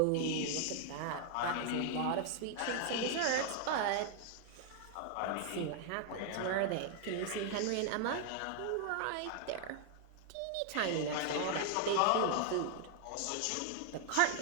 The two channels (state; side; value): different; both; correlation 0.00